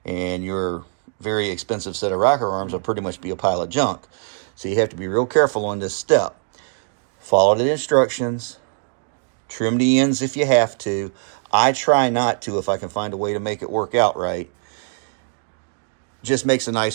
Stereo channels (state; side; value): silent; left; 64 dB below the other